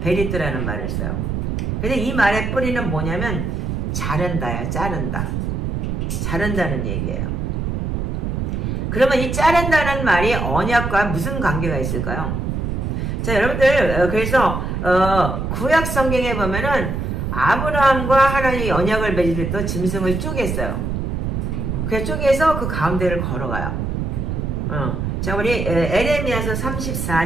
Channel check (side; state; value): right; noise; rumble, 2 dB below the sound